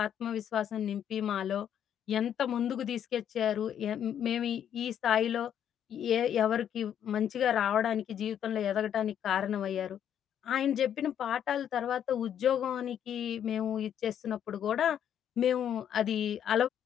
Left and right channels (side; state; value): right; quieter; 9.5 dB